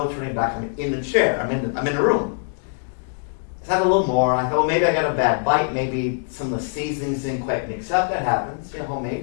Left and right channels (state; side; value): silent; right; 64 dB below the other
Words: turning back. I'm in the chair. I'm in the room. I had a little more. I thought, maybe I got a bad bite. Maybe some of the seasonings didn't quite mix up. That happens,